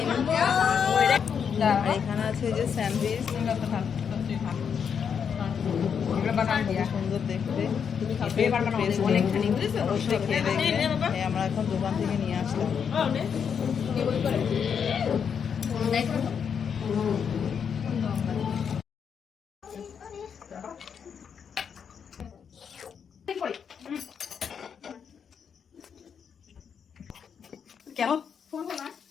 আর এখানে আছে যে স্যান্ডউইচ, সুন্দর দেখতে। অবশ্যই খেয়ে দেখবে। আমরা এখন দোকান থেকে নিয়ে আসলাম। কেমন?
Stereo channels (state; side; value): quieter; right; 7.1 dB